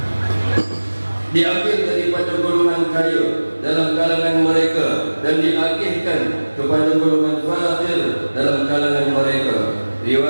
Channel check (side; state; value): both; inverted; correlation -1.00